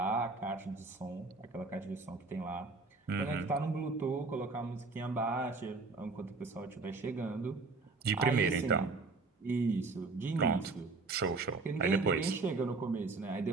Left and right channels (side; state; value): left; quieter; 3.8 dB